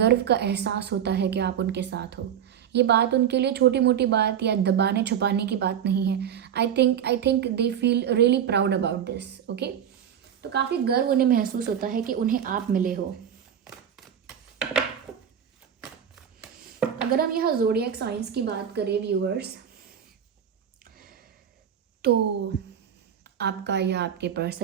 का एहसास होता है कि आप उनके साथ हो। ये बात उनके लिए छोटी मोटी बात या दबाने छुपाने की बात नहीं है। I think they feel really proud about this. Okay, तो काफ़ी गर्व उन्हें महसूस होता है कि उन्हें आप मिले हो। अगर हम यहाँ ज़ोडिएक साइंस की बात करें व्यूअर्स, तो आपका या आपके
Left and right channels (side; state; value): left; quieter; 8.9 dB